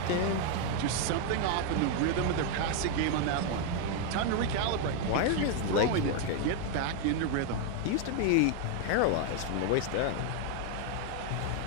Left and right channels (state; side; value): different; both; correlation 0.01